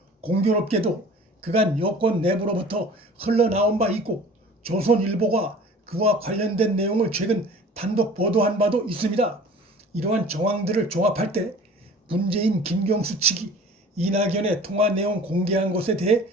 공교롭게도 그간 여권 내부로부터 흘러나온 바 있고 조선일보가 그와 관련된 내용을 최근 단독 보도한 바도 있습니다. 이러한 정황들을 종합할 때 문재인 김경수 측이 이낙연의 통화 내용 공개한 것에 대해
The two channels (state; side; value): normal; both; correlation 0.44